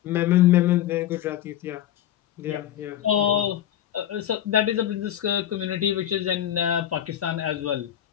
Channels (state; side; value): quieter; right; 11.5 dB